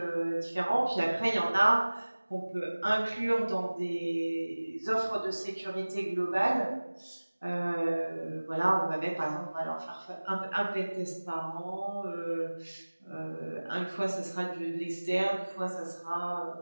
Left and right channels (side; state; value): both; inverted; correlation -1.00